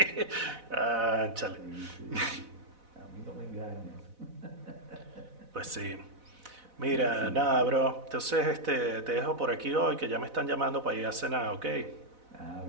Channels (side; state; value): left; late; 4.0 ms